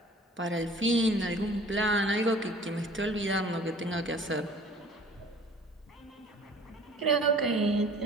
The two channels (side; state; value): both; normal; correlation 0.49